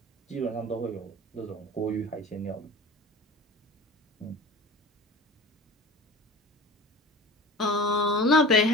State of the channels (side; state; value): both; normal; correlation 0.38